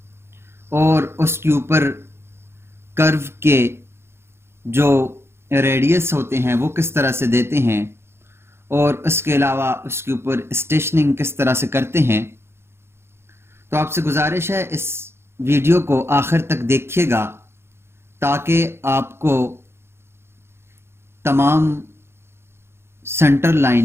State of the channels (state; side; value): late; left; 0.12 ms